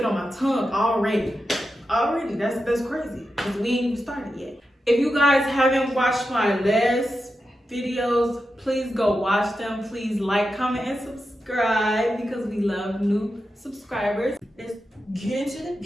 on my tongue already. That's crazy. Cause we ain't even started yet. If you guys haven't watched my last videos, please go watch them. Please like, comment, and subscribe because we love new subscribers. Let's get into the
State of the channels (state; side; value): normal; both; correlation 0.89